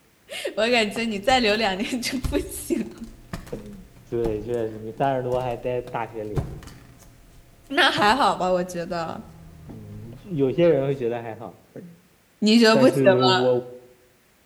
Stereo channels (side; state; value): both; identical; correlation 1.00